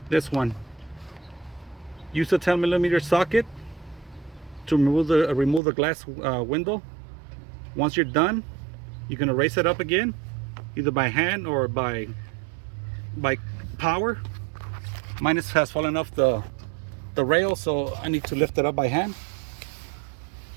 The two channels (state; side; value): drops out; left; at 5.6 s